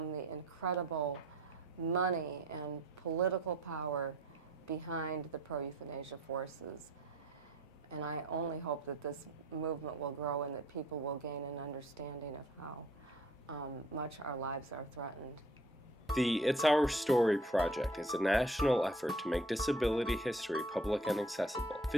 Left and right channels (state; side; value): normal; both; correlation 0.55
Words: the incredible money and political power behind the pro-euthanasia forces. And I only hope that this movement will grow and that people will gain an understanding of how much our lives are threatened. The It's Our Story project is a national effort to make disability history public and accessible.